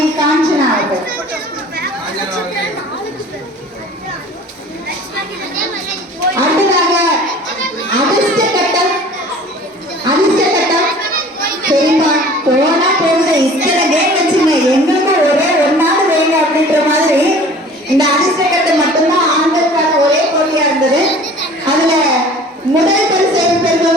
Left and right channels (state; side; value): normal; both; correlation 0.46